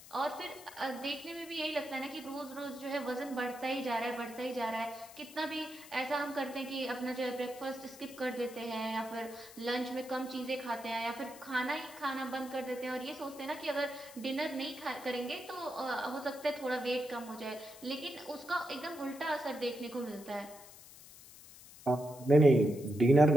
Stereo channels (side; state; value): left; noise; hiss, 18 dB below the sound